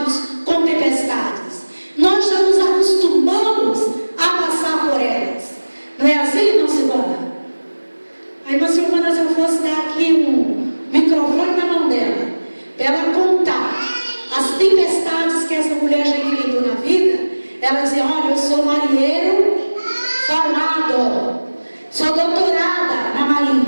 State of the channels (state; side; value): inverted; both; correlation -1.00